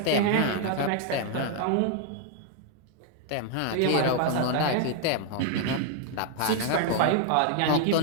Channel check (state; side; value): different; both; correlation 0.00